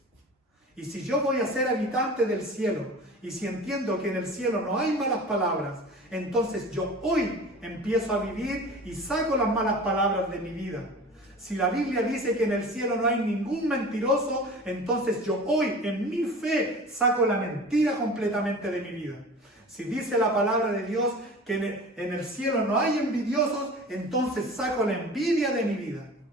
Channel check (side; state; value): both; normal; correlation 0.38